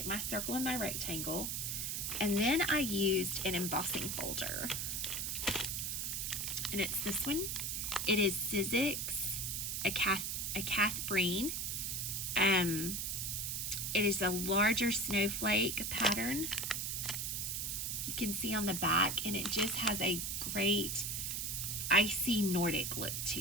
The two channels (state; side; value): noise; right; hiss, 1 dB below the sound